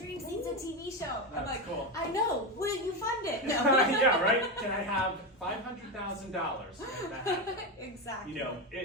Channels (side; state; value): both; normal; correlation 0.14